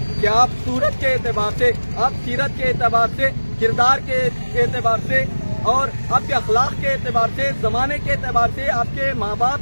کہ آپ صورت کے اعتبار سے، آپ سیرت کے اعتبار سے، کردار کے اعتبار سے اور آپ کے اخلاق کے اعتبار سے، زمانے کے اعتبار سے، آپ کے ماں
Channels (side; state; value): both; inverted; correlation -1.00